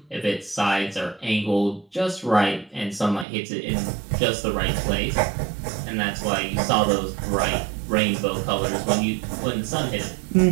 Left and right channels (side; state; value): left; drops out; at 3.2 s